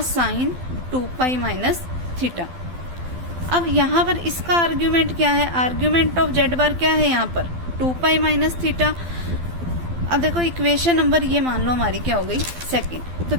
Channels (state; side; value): late; left; 12 ms